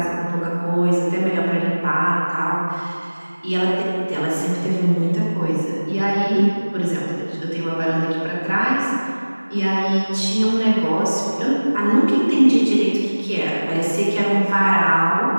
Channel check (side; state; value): both; inverted; correlation -1.00